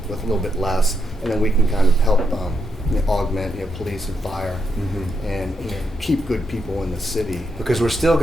a little bit less, and then we can kind of help augment police and fire and keep good people in the city. Because we're still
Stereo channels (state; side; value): normal; both; correlation 0.81